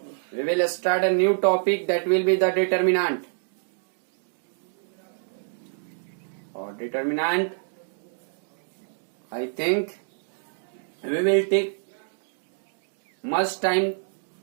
we will start a new topic that will be the determinant. Or determinant, I think we will take much time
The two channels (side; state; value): left; silent; digital silence